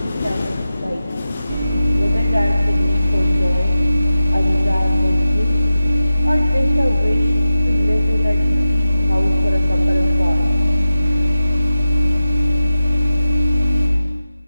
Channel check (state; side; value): inverted; both; correlation -0.92